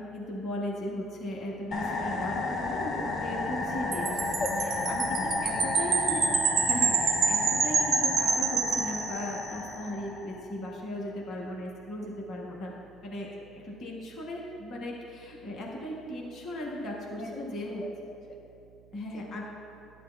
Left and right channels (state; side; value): noise; right; hum, 26 dB below the sound